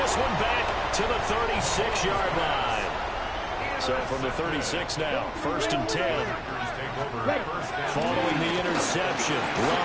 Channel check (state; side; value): identical; both; correlation 1.00